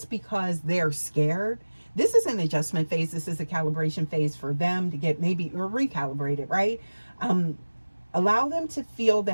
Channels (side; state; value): both; inverted; correlation -1.00